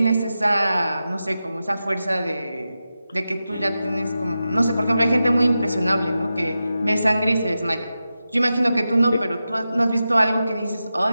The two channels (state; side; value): inverted; both; correlation -0.91